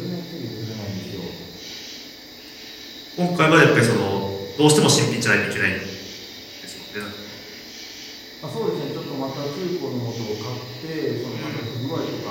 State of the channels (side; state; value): both; identical; correlation 1.00